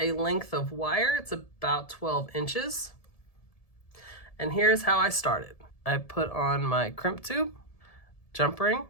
length of wire. It's about 12 inches. And here's how I started. I put on my crimp tube, jump ring,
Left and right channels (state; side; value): late; right; 1.7 ms